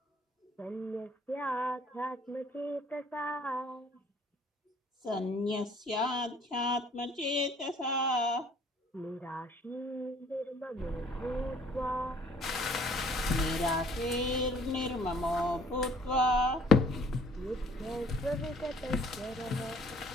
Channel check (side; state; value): both; normal; correlation 0.57